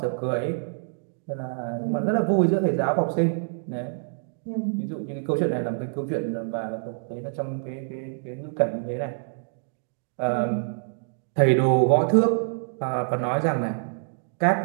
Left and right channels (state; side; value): silent; left; digital silence